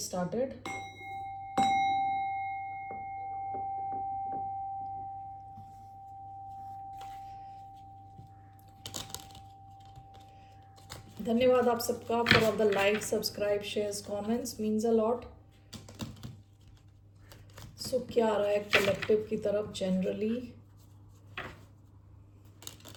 धन्यवाद आप सबका for all the like, subscribe, shares, comments, means a lot. So क्या आ रहा है कलेक्टिव की तरफ generally?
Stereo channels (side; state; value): both; identical; correlation 1.00